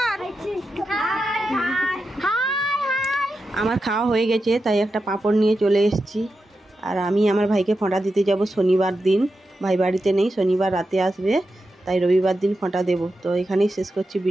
আমার খাওয়া হয়ে গেছে, তাই একটা পাঁপড় নিয়ে চলে এসেছি। আর আমি আমার ভাইকে ফোঁটা দিতে যাব শনিবার দিন। ভাই বাড়িতে নেই, শনিবার রাতে আসবে, তাই রবিবার দিন ফোঁটা দেবো। তো এখানেই শেষ করছি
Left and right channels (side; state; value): both; normal; correlation 0.89